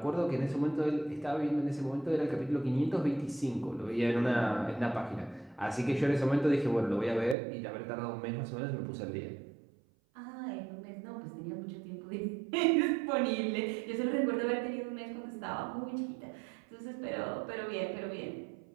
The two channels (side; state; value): left; drops out; at 7.4 s